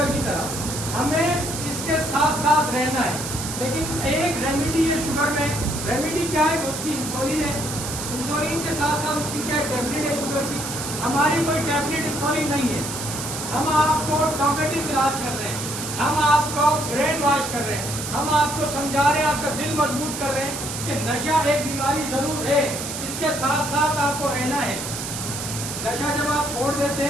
کی طرح۔ ہمیں اس کے ساتھ ساتھ رہنا ہے، لیکن ایک ریمیڈی ہے شوگر میں۔ ریمیڈی کیا ہے؟ اس کی انسولین ہے۔ انسولین کے ساتھ ساتھ اس کی کیا ٹیبلٹ ہے شوگر کی۔ ہماری کوئی ٹیبلٹ انسولین نہیں ہے، ہم آپ کو ٹاپیٹو علاج کر رہے ہیں، ہم آپ کو برین واش کر رہے ہیں، ہم آپ کو سمجھا رہے ہیں، آپ کا دل مضبوط کر رہے ہیں کہ نشہ ایک بیماری ضرور ہے، اس کے ساتھ ساتھ آپ کو رہنا ہے۔ نشہ جب آپ چھوڑ دیتے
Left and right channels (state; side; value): noise; right; hiss, 6 dB below the sound